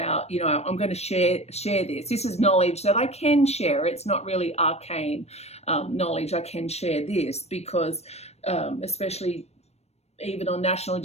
I'm going to share this. This is knowledge that I can share. It's not really arcane knowledge. I can share this because especially even on National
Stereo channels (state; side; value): late; right; 0.31 ms